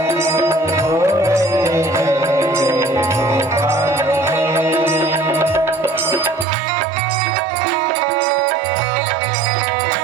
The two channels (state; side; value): drops out; left; at 6.5 s